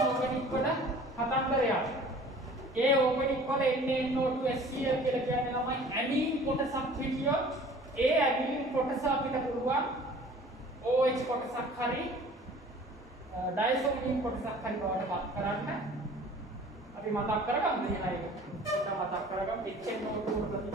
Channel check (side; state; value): both; normal; correlation 0.48